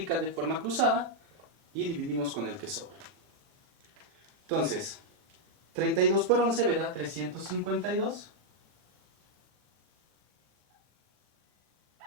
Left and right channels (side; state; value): left; late; 40 ms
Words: de forma cruzada y dividimos con el que sobra. Entonces, 32 por 11 me da 352.